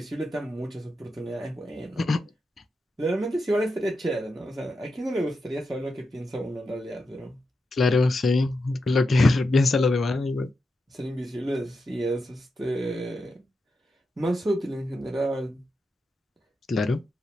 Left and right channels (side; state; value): both; normal; correlation 0.87